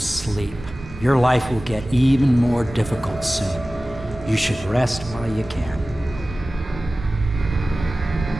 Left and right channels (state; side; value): normal; both; correlation 0.97